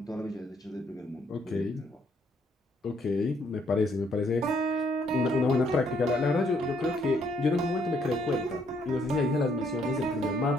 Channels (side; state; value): both; normal; correlation 0.69